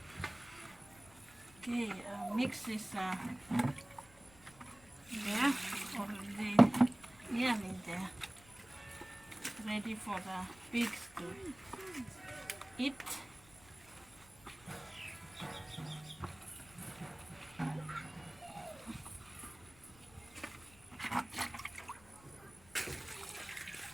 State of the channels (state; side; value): noise; left; rumble, 24 dB below the sound